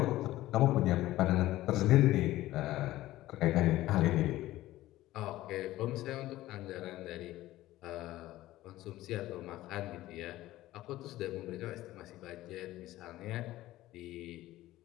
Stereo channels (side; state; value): right; quieter; 16.0 dB